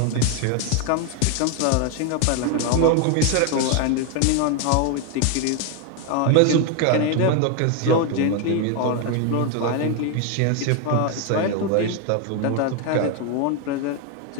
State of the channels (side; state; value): both; different; correlation 0.01